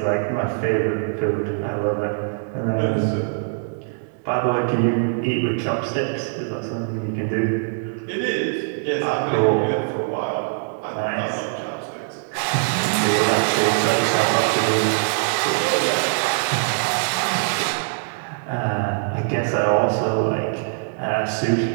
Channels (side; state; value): left; silent; digital silence